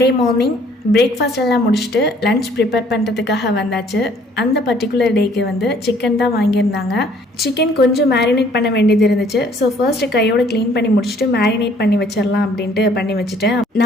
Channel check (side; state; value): both; normal; correlation 0.60